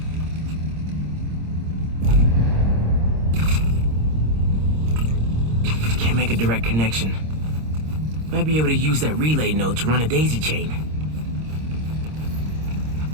Can't make a direct connection. Might be able to use that relay node to run a daisy chain.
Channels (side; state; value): left; late; 26 ms